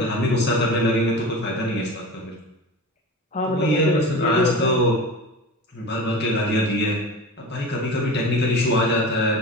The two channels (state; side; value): normal; both; correlation 0.32